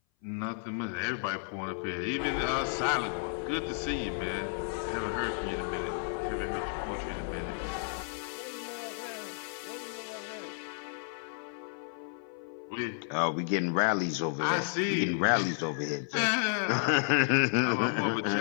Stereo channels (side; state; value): right; silent; 56 dB below the other